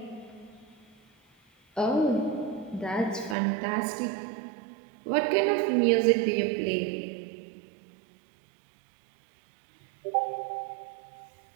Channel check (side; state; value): left; drops out; at 3.4 s